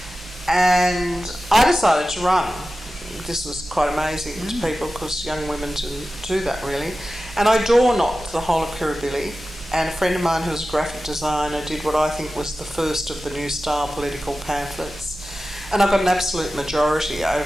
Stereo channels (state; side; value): normal; both; correlation 0.94